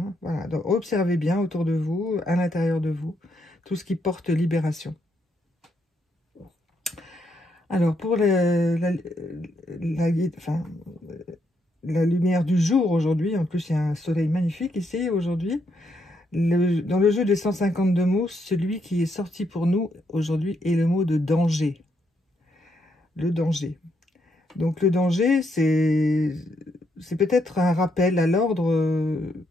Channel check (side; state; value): both; normal; correlation 0.77